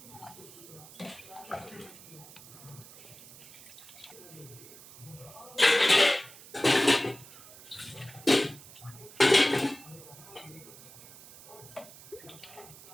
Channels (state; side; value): noise; right; hiss, 18 dB below the sound